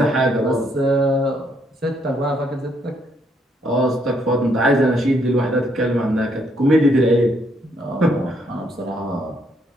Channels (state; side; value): normal; both; correlation 0.72